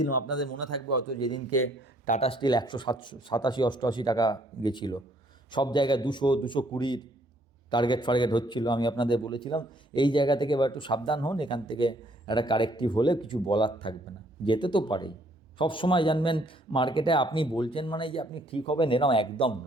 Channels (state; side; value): normal; both; correlation 0.65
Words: আপনাদের মনে থাকবে হয়তো, যেদিনকে টাটা স্টিল 187-88 টাকা গেছিলো, সব জায়গায় 200-220 টার্গেট হচ্ছিল। আমি আপনাদের বলেছিলাম এই জায়গা থেকে এবার একটু সাবধান হন, এখান থেকে একটা কারেক্টিভ হলে কিছু বলার থাকবে না, যেতে তো পারেই। সব সময় জানবেন মার্কেটে আপনি বলছেন মানে যে আপনি ঠিক হবেন এরকম একদম